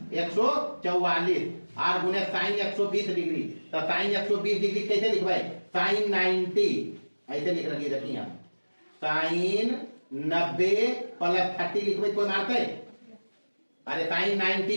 144 और गुने साइन 120 डिग्री, तो साइन 120 डिग्री कैसे लिखवाए, साइन 90 ऐसे लिख रखिए, देखिए हम साइन 90 प्लस 30 लिखवाए, कोई मारते है? अरे साइन 90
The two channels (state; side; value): inverted; both; correlation -1.00